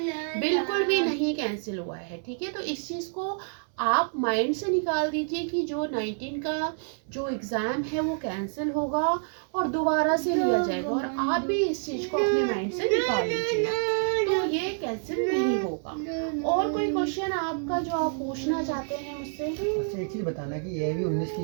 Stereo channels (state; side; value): silent; left; 60 dB below the other